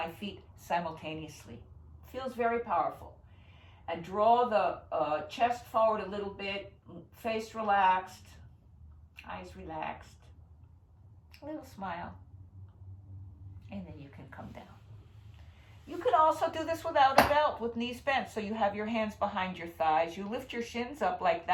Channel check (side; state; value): both; identical; correlation 1.00